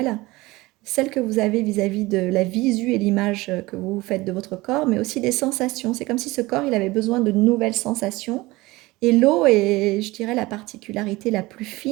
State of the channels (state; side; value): quieter; left; 20.7 dB